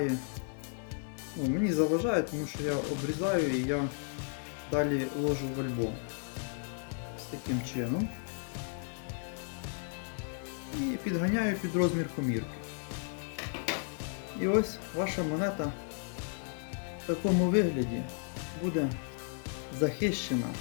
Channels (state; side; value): silent; right; 55 dB below the other